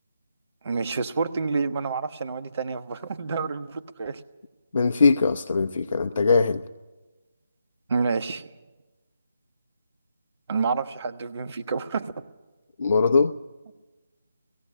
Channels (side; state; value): both; inverted; correlation -0.80